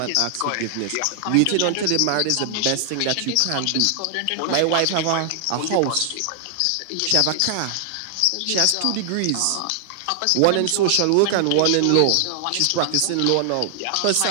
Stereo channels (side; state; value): both; different; correlation 0.00